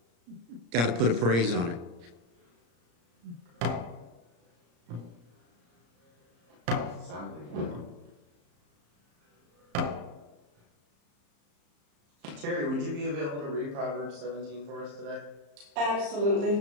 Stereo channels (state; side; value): late; left; 34 ms